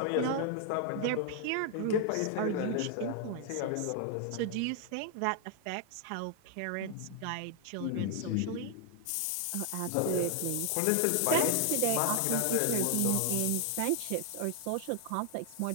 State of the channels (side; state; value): both; different; correlation 0.00